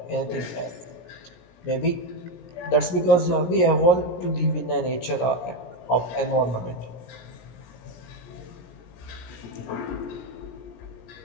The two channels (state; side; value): late; right; 17 ms